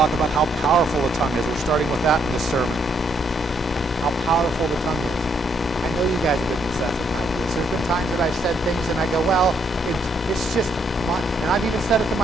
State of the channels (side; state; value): both; normal; correlation 0.72